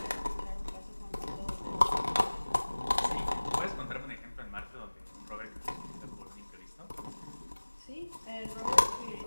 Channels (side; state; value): both; inverted; correlation -1.00